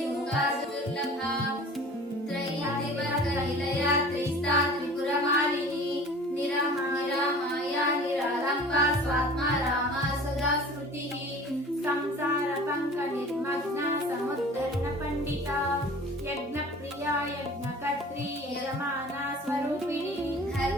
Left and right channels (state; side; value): normal; both; correlation 0.43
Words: दुर्लभा त्रयीतिवर्गनिलया त्रिस्ता त्रिपुरमालिनी निरमाया माया निरालम्बा स्वात्मा रामा सदा स्मृतिः संसारपङ्कनिर्मग्ना समुद्धरणपण्डिता यज्ञप्रिया यज्ञकर्त्री यजमाना स्वरूपिणी